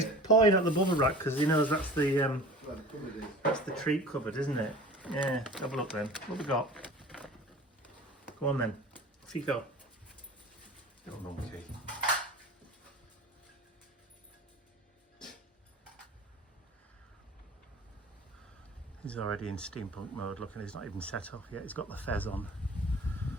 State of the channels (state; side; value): normal; both; correlation 0.40